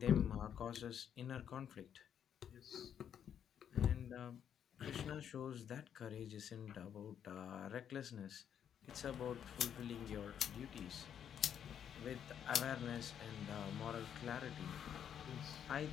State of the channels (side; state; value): right; quieter; 8.9 dB